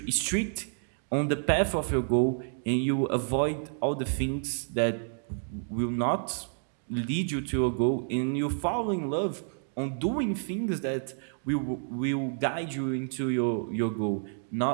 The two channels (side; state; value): left; silent; digital silence